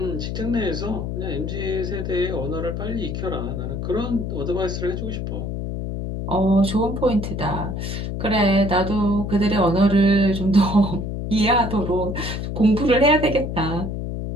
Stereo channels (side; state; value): left; noise; hum, 4 dB below the sound